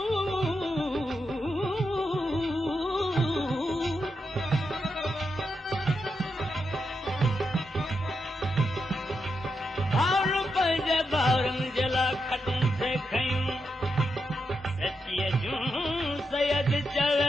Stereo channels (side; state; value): both; normal; correlation 0.85